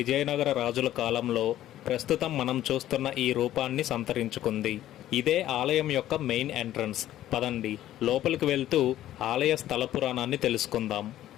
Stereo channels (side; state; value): right; quieter; 13.1 dB